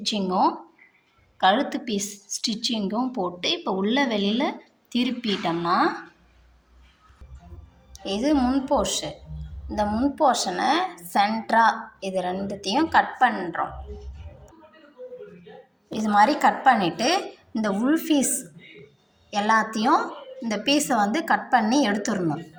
கழுத்து பீஸ் ஸ்டிச்சிங்கும் போட்டு இப்போ உள்ள வெளியில் திருப்பிட்டோம்னா இது முன் போர்ஷன். இந்த முன் போர்ஷனை சென்டராக இது ரெண்டுத்தையும் கட் பண்ணுறோம். இது மாதிரி கட் பண்ணிவிட்டு இந்த உள் பீஸ் எல்லாத்தையும் இந்த பீஸை வந்து கட் பண்ணி எடுத்துடணும்.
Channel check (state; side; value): identical; both; correlation 1.00